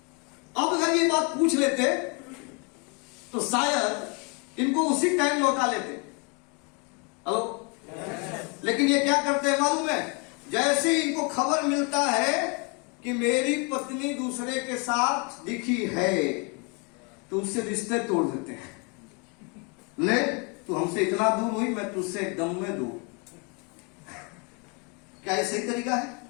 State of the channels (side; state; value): right; quieter; 33.0 dB